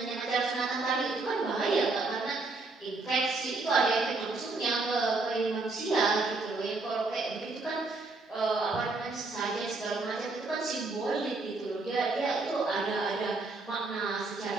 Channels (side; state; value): left; quieter; 3.5 dB